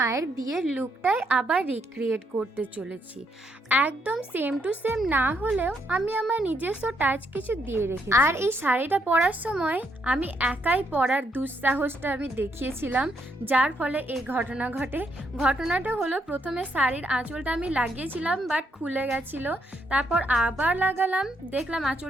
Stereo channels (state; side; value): normal; both; correlation 0.75